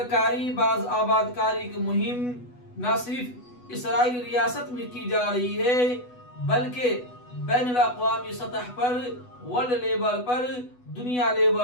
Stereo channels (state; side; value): late; right; 8.1 ms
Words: باز آباد کاری کی مہم نہ صرف اسرائیل ریاست میں کی جا رہی ہے، بلکہ بین الاقوامی سطح پر، ورلڈ لیول پر، دنیا